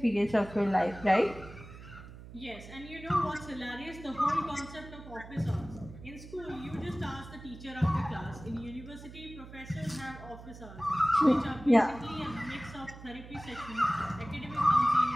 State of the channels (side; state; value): right; noise; hum, 15 dB below the sound